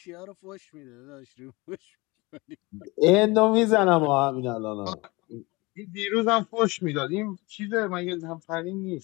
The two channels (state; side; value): quieter; right; 24.0 dB